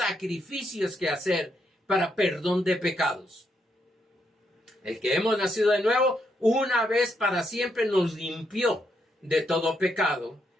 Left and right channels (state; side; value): normal; both; correlation 0.78